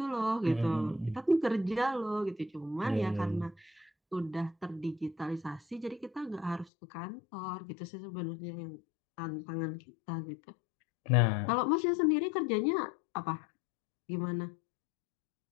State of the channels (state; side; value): drops out; right; at 6.7 s